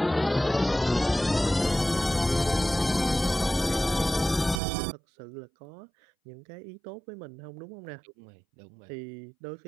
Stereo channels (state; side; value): drops out; left; at 4.6 s